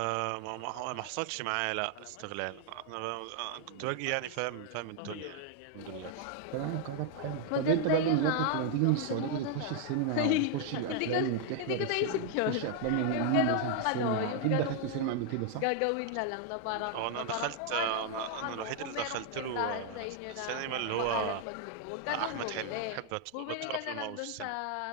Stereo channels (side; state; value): both; different; correlation 0.00